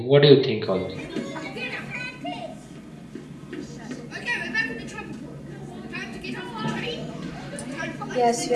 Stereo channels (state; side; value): identical; both; correlation 1.00